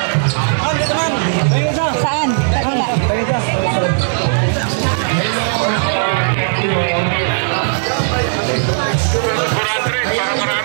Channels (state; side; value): silent; left; digital silence